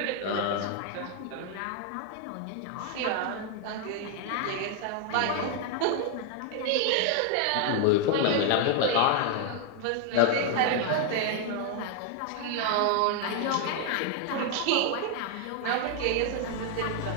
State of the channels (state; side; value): different; both; correlation 0.00